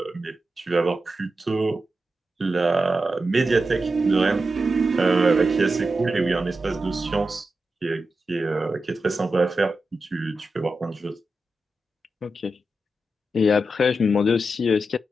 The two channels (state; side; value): normal; both; correlation 0.90